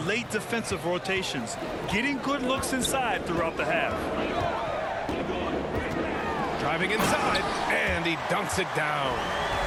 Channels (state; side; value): identical; both; correlation 1.00